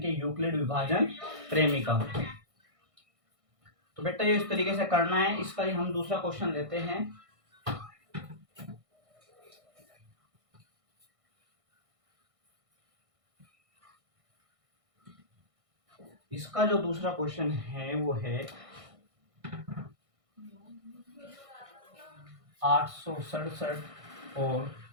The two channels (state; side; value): late; left; 1.6 ms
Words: यूक्लिड विभाजन प्रेमिका। तो बेटा ये इस तरीके से करना है। इसका ही हम दूसरा क्वेश्चन लेते हैं। इसका जो दूसरा क्वेश्चन है वो है 867 और